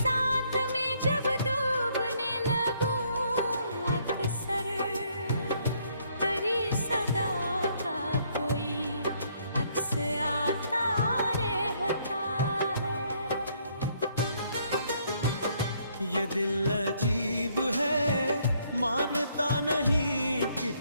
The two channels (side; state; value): both; inverted; correlation -0.68